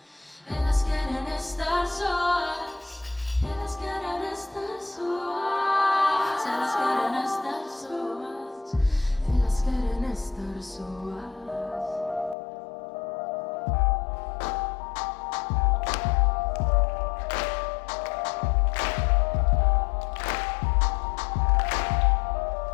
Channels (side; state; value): right; drops out; at 12.4 s